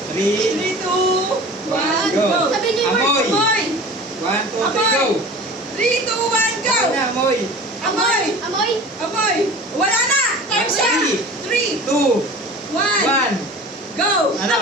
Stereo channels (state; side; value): normal; both; correlation 0.39